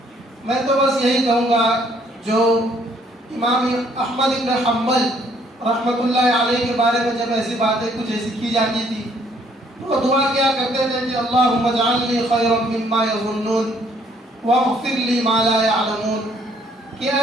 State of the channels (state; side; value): normal; both; correlation 0.65